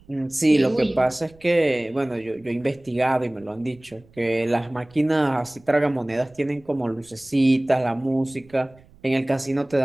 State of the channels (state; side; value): noise; right; rumble, 27 dB below the sound